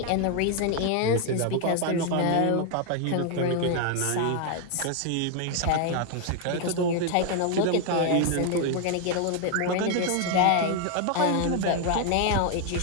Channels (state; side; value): different; both; correlation 0.00